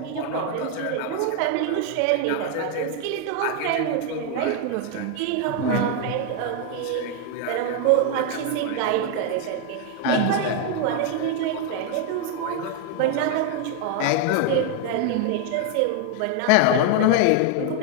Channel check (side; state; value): both; different; correlation 0.01